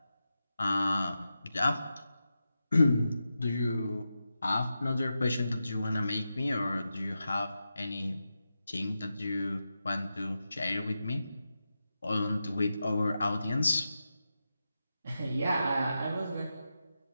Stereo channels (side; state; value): both; inverted; correlation -0.90